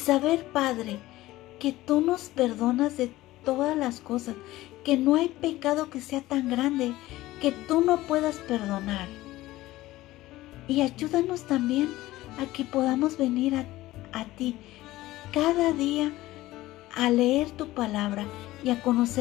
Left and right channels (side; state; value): right; quieter; 17.0 dB